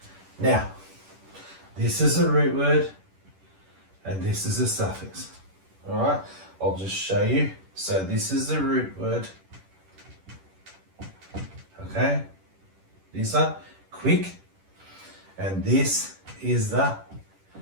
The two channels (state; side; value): late; left; 10 ms